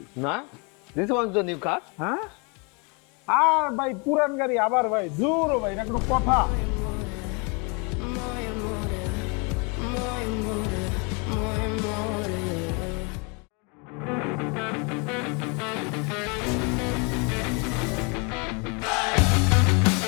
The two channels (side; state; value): right; quieter; 32.5 dB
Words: না, this was the new car. হ্যাঁ, আর ভাই পুরান গাড়ি আবার ভাই জোর ভাই, এটা কোনো কথা?